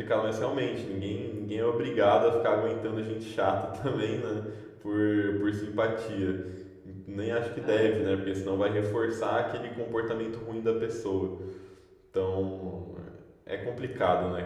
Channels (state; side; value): identical; both; correlation 1.00